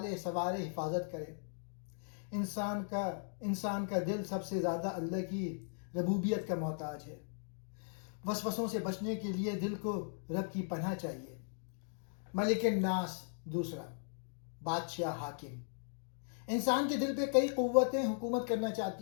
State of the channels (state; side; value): silent; right; digital silence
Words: سنوارے، حفاظت کرے۔ انسان کا دل سب سے زیادہ اللہ کی ربوبیت کا محتاج ہے۔ وسوسوں سے بچنے کے لیے دل کو رب کی پناہ چاہیے۔ ملک الناس، دوسرا، بادشاہ، حاکم۔ انسان کے دل پہ کئی قوتیں حکومت کرنا